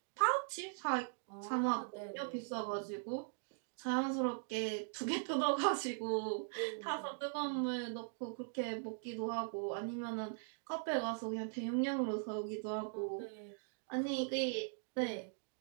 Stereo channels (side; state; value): left; silent; digital silence